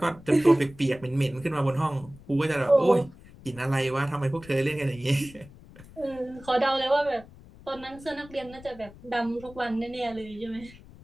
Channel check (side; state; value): left; noise; rumble, 20 dB below the sound